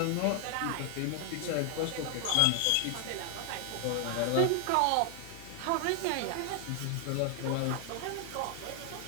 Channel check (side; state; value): both; different; correlation 0.00